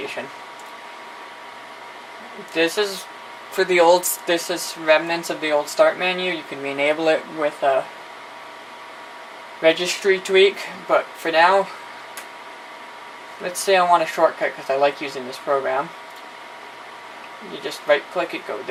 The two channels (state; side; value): identical; both; correlation 1.00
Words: This is for the old, this is remnants of the old start menu. You can re-enable it with a registry tweak, but for now, let's say I want a shortcut because I like using this program. You just right click it, go